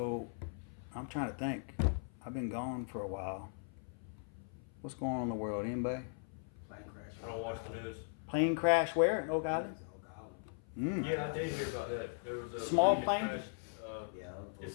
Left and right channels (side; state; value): right; silent; 52 dB below the other